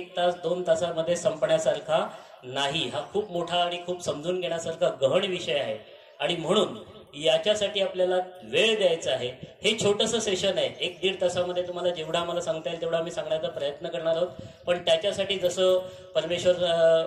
तास, 2 तासामध्ये संपण्यासारखा नाही. हा खूप मोठा आणि खूप समजून घेण्यासारखा गहन विषय आहे. आणि म्हणून याच्यासाठी आपल्याला वेळ द्यायचा आहे. हे छोटंसं सेशन आहे, 1-1.5 तासामध्ये तुम्हाला जेवढा आम्हाला सांगता येईल तेवढा आम्ही सांगण्याचा प्रयत्न करणार आहोत. पण त्याच्यासाठी जसं परमेश्वर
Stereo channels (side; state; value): both; identical; correlation 1.00